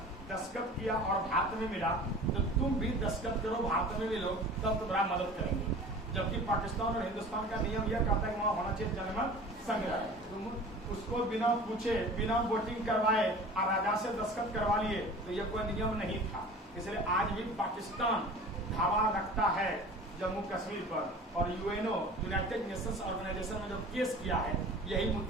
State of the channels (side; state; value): both; normal; correlation 0.41